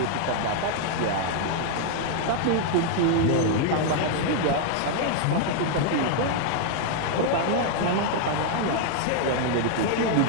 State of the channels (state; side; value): different; both; correlation 0.00